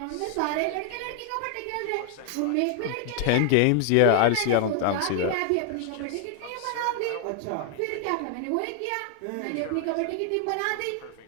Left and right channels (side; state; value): both; different; correlation 0.00